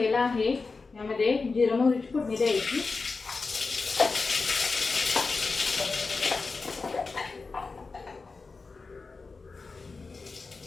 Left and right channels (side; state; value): right; quieter; 4.2 dB